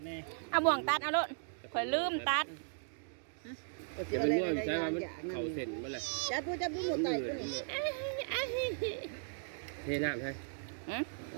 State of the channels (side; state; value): left; silent; digital silence